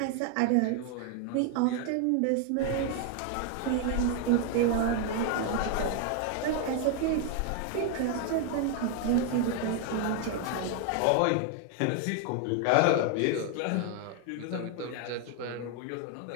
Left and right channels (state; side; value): different; both; correlation 0.01